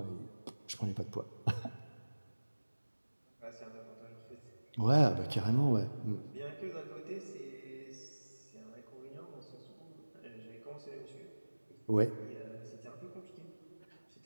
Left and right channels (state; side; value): inverted; both; correlation -1.00